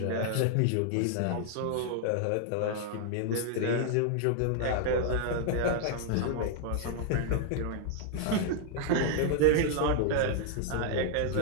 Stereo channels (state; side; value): different; both; correlation -0.01